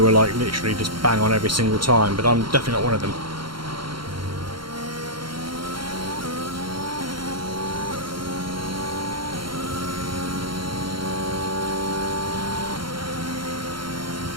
are like literally just bang on every single time, but I'm definitely not one of them.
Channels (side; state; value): left; late; 0.73 ms